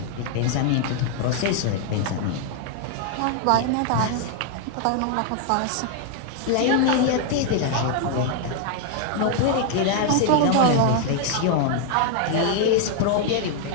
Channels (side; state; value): both; different; correlation 0.00